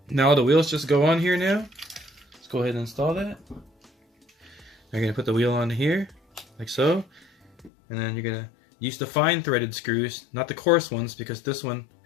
Now the wheels just go on here now. Let's go ahead and install that. You're going to put the wheel on here, like so. And then you're going to use the fine threaded screws, not the coarse ones, because this one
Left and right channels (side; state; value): right; drops out; at 7.7 s